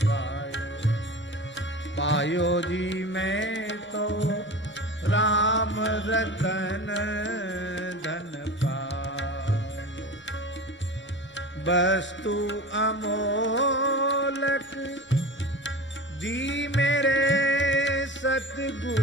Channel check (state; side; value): normal; both; correlation 0.33